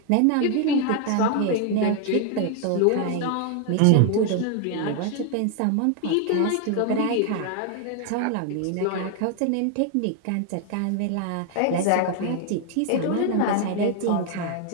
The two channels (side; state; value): both; different; correlation 0.00